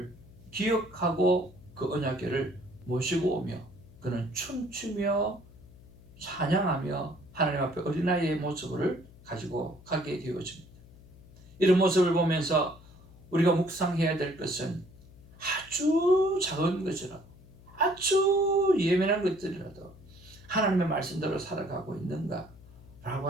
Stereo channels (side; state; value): left; noise; hum, 22 dB below the sound